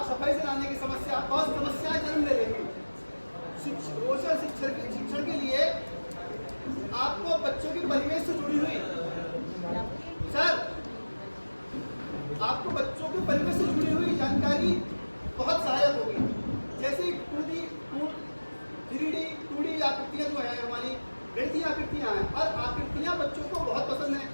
सफाई से लाने की समस्या, बहुत समस्याएं जन्म ले लेंगी। रोचक शिक्षण के लिए आपको बच्चों के परिवेश से जुड़ी हुई आपको बच्चों के परिवेश से जुड़ी हुई जानकारी बहुत सहायक होगी। जैसे 2D, 3D, 2D आकृतियां जो है हमारी गणितीय आकृतियां हैं, और आकृतियां बच्चों को बहुत पसंद है।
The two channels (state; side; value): inverted; both; correlation -1.00